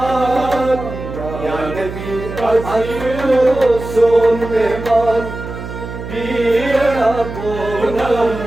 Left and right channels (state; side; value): noise; right; hum, 9 dB below the sound